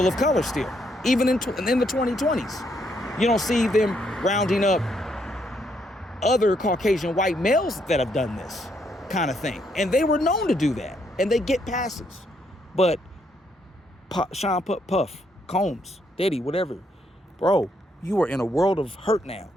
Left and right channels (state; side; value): normal; both; correlation 0.74